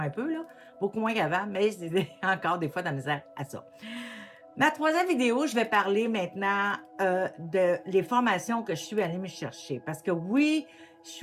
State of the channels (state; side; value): identical; both; correlation 1.00